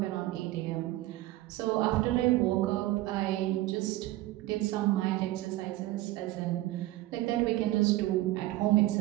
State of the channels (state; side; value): quieter; left; 16.9 dB